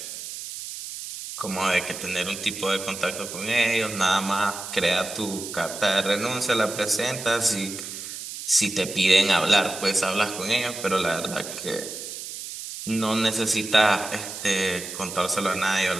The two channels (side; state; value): right; noise; hiss, 9 dB below the sound